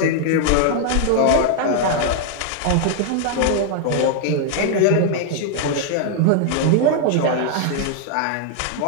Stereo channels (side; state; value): both; different; correlation 0.00